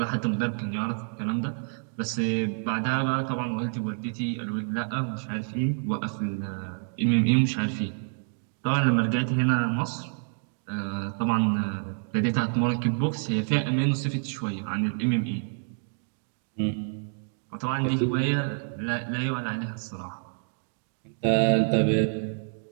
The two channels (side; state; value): left; silent; digital silence